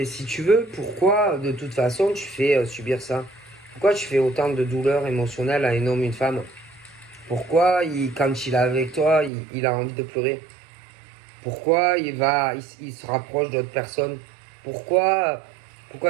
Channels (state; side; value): drops out; left; at 9.3 s